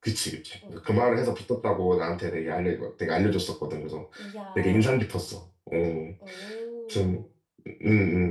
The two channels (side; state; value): both; identical; correlation 1.00